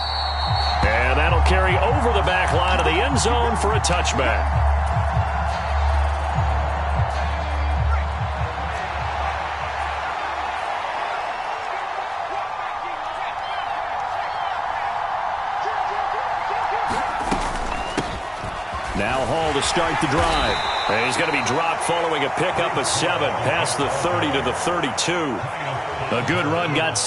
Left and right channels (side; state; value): both; identical; correlation 1.00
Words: And that'll carry over the back line of the end zone for a touchback. Now Hall to start the drive. And he's going to be dropped following a pickup of 7 past the 30 to the 32. A good run got